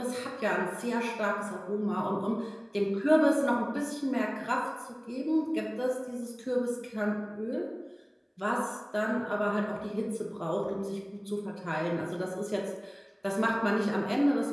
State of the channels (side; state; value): both; identical; correlation 1.00